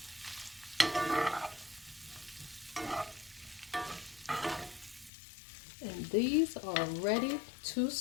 And these are ready to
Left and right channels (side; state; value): right; drops out; at 5.1 s